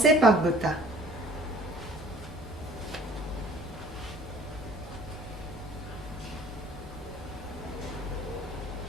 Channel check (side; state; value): both; normal; correlation 0.53